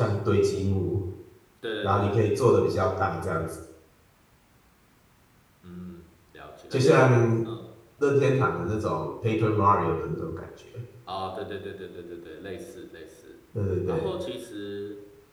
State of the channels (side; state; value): both; identical; correlation 1.00